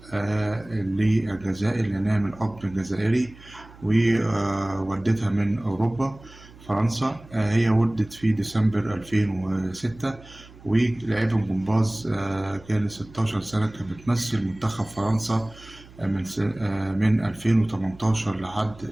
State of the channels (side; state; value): right; noise; hum, 22 dB below the sound